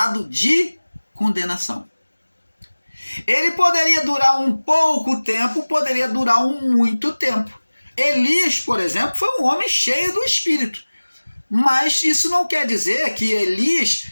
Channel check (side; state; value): both; inverted; correlation -1.00